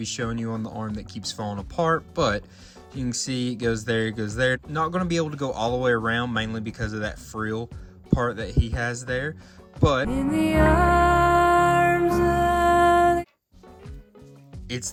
showing you on the arm that keeps falling apart, but you can see it goes there, it goes there. Not going to be able to go all the way around, mainly because of that frill part that he has there, but in the arms it's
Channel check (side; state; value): both; identical; correlation 1.00